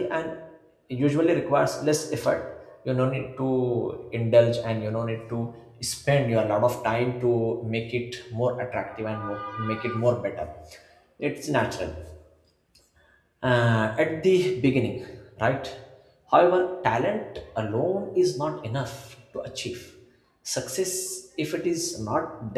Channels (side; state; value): both; identical; correlation 1.00